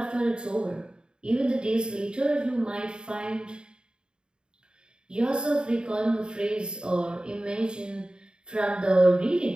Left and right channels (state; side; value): late; left; 0.049 ms